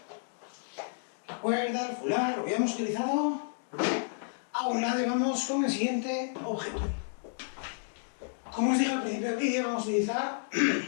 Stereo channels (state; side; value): silent; right; digital silence